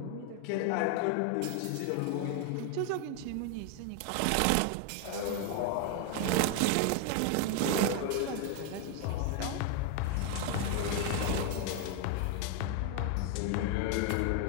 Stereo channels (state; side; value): different; both; correlation 0.01